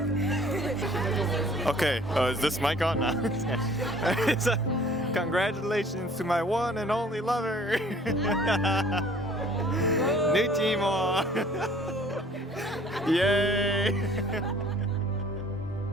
Okay, is this mic on now? So, congratulations to my one and only lover. New team. Yay!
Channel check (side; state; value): both; normal; correlation 0.53